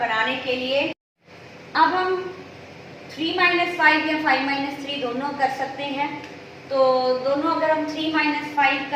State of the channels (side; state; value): both; identical; correlation 1.00